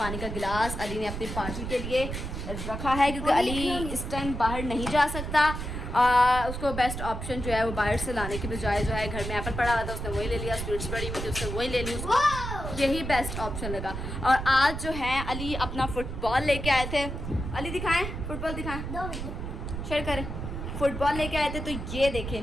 का गिलास अली ने अपनी पार्टी के लिए रखा है क्योंकि अली इस टाइम बाहर नहीं जा सकता। उसको बेस्ट ऑप्शन जो है वो बाहर से लाने की बजाय जो है घर में एप्पल पड़ा हुआ था उसने वही ले लिया, स्वीट्स पड़ी हुई थी उसने वही ले ली, उसको यही बेस्ट ऑप्शन लगा। और आज जो है अली अपना फुटबॉल लेके आए थे। अली दिखाएं, फुटबॉल दिखाएं, शेयर करें। फुटबॉल लेके आए थे तो ये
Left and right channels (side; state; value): right; noise; rumble, 6 dB below the sound